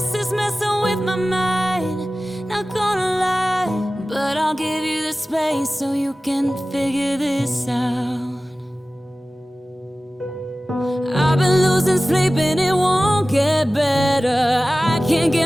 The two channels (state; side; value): normal; both; correlation 0.96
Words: is messing with my mind. Not gonna lie, but I'll give you the space so you can figure this out. I've been losing sleep and it won't get better. I can't